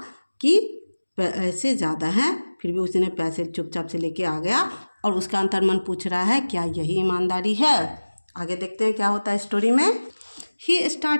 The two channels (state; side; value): inverted; both; correlation -1.00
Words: कि पैसे ज़्यादा हैं फिर भी उसने पैसे चुपचाप से लेके आ गया और उसका अंतर्मन पूछ रहा है क्या यही ईमानदारी है। आगे देखते हैं क्या होता है स्टोरी में। ही